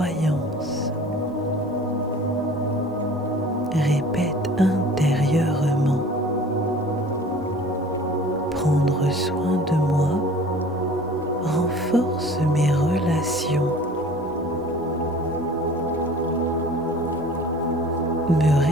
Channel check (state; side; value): normal; both; correlation 0.45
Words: Répète intérieurement: prendre soin de moi renforce mes relations. Me